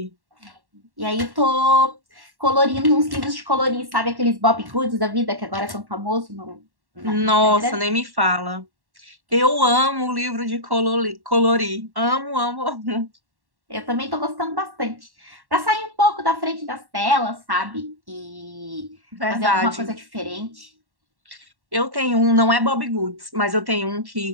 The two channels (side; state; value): left; late; 1.1 ms